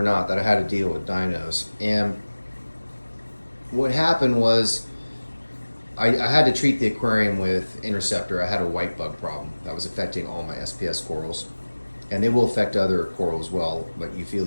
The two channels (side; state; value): both; inverted; correlation -1.00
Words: not, that I had to deal with dinos. And what happened was I had to treat the aquarium with interceptor. I had a white bug problem that was affecting all my SPS corals. And they will affect other coral as well, like